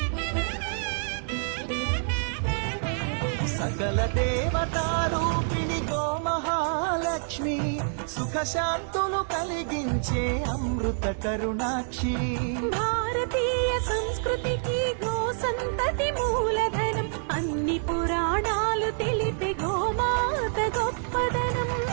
సకల దేవతారూపిణి గోమహాలక్ష్మి సుఖ శాంతులు కలిగించే అమృత కరుణాక్షి భారతీయ సంస్కృతికి గో సంతతి మూలధనం అన్ని పురాణాలు తెలిపే గోమాత గొప్పదనం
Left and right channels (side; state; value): left; silent; digital silence